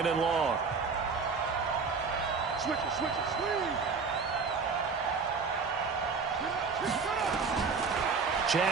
and long. Switch it, switch it, swing.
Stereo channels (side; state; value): left; quieter; 5.0 dB